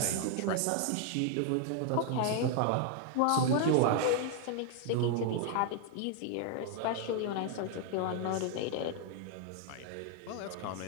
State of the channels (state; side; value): different; both; correlation 0.00